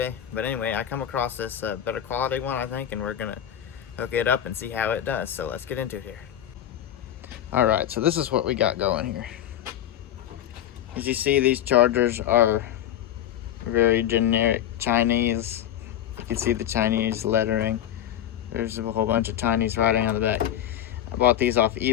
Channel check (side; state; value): right; quieter; 11.1 dB